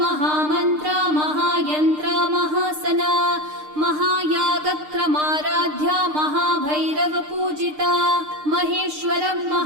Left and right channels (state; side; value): late; left; 6.6 ms